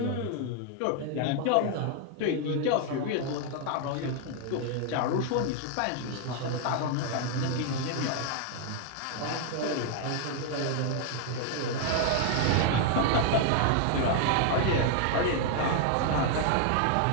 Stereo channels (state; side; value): different; both; correlation 0.00